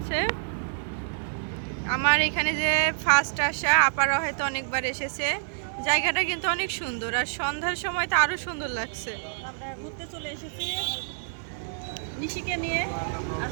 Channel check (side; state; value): left; silent; digital silence